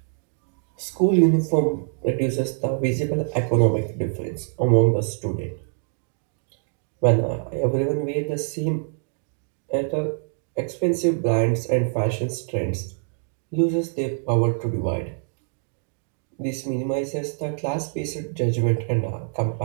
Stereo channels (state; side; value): silent; left; digital silence